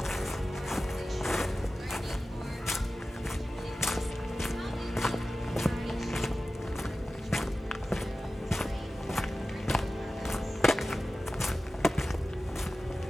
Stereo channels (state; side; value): normal; both; correlation 0.95